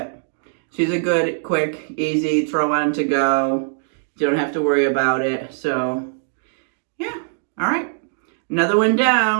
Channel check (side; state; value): left; silent; digital silence